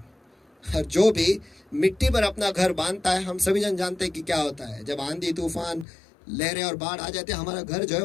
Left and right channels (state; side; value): drops out; right; at 5.9 s